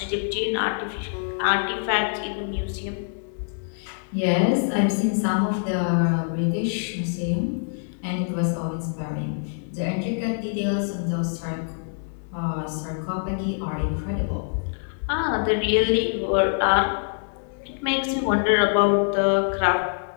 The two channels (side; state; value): right; silent; digital silence